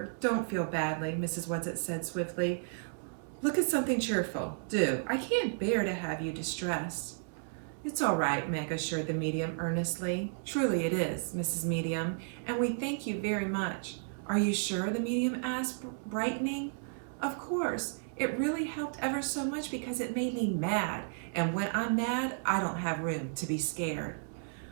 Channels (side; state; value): left; silent; digital silence